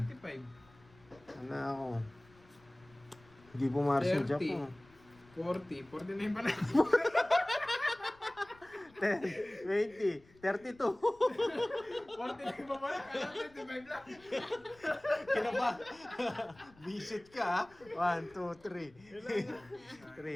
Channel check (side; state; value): left; noise; rumble, 27 dB below the sound